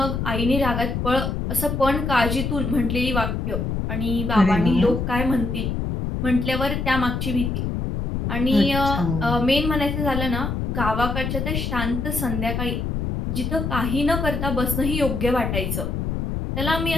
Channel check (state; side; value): noise; left; rumble, 2 dB below the sound